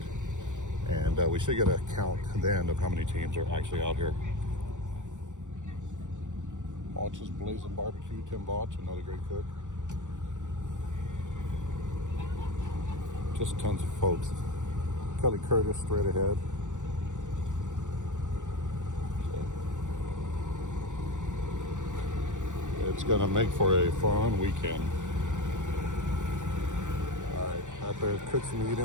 And we should get a count then of how many teams are actually out here. Botch's Blazing Barbecue, Tim Botch, another great cook. Just tons of folks. Kelly Curtis straight ahead. So It's gonna make for a fun weekend. All right, out there, cooks and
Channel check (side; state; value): left; late; 0.86 ms